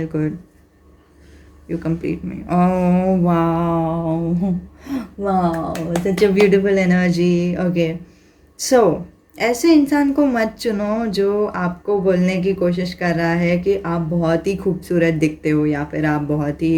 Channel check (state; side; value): identical; both; correlation 1.00